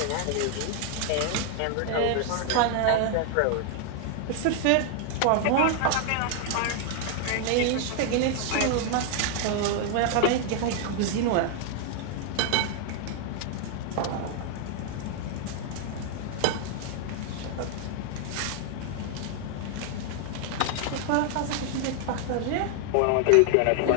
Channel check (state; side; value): different; both; correlation 0.00